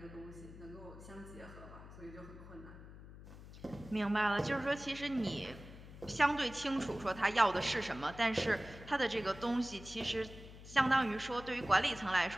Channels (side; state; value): left; noise; hum, 16 dB below the sound